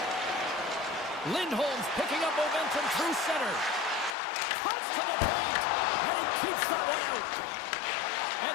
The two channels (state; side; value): drops out; right; at 4.2 s